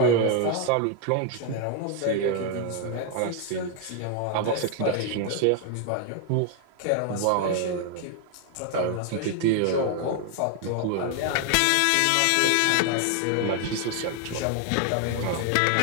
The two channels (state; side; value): different; both; correlation 0.00